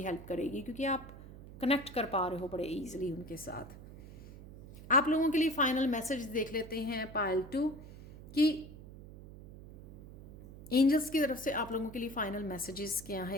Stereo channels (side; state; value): right; noise; hum, 16 dB below the sound